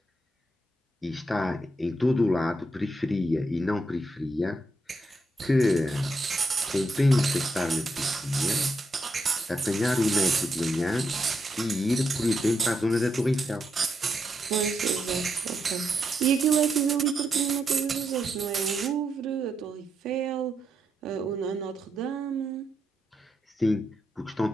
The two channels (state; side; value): normal; both; correlation 0.82